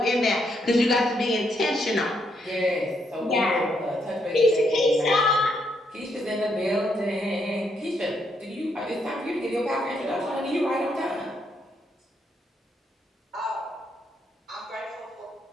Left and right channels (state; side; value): normal; both; correlation 0.76